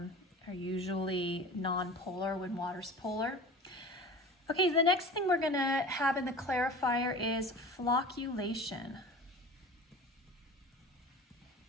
usually non-polar when water's polar. Okay, the next thing we're going to have in the clarifier is flocculation.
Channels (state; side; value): normal; both; correlation 0.37